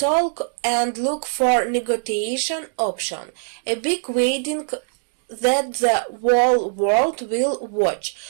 and look for negotiation option, a big wedding that the whole world will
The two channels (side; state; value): left; silent; digital silence